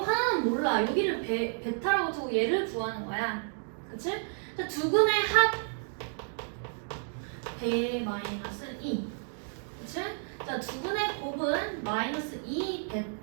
몰라. 여기를 베타라고 두고 얘를 구하는 거야. 그치? 자, 두 근의 합 배 마이너스 2. 그치? 자, 두 근의 곱은 마이너스 2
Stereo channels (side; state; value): left; silent; 57 dB below the other